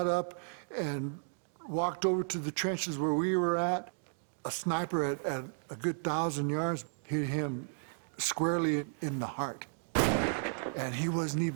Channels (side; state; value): left; silent; digital silence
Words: up and walked over to the trenches where we were at. A sniper at a good 1,000 yards hit him squarely in the heart. And he wasn't